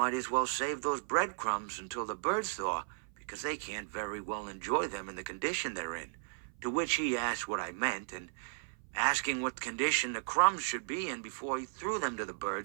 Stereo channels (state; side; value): silent; left; 54 dB below the other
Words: as well save those breadcrumbs until the birds thaw, because they can't very well enjoy them in the condition they're in. To which he asked what I meant, and asking what condition the crumbs should be in before he threw them to the